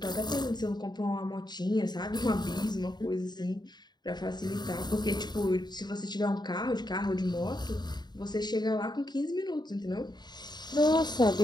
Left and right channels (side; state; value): right; late; 0.20 ms